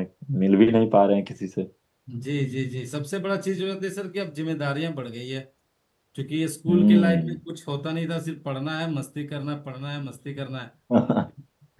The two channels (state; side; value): identical; both; correlation 1.00